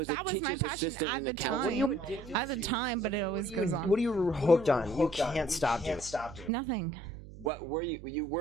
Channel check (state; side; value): noise; right; hum, 16 dB below the sound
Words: a that was my teacher's passion assistant at in the accounting. time. At the time, but it always goes on. What are you hooked on? You can't stop doing. Nothing. What were you? You